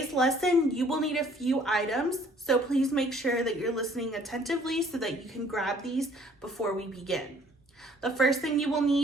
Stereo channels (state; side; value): normal; both; correlation 0.58